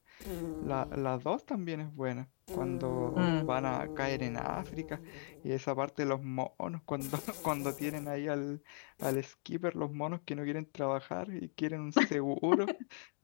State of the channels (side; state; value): right; silent; 52 dB below the other